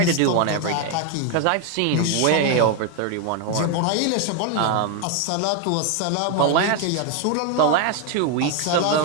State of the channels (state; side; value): different; both; correlation 0.01